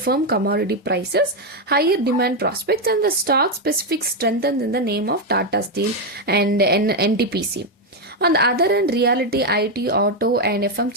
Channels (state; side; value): normal; both; correlation 0.04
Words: commodity prices, higher demand prospects, and the stock-specific strengthened in the name of Tata Steel and NTPC. On the other hand, realty, IT, auto, and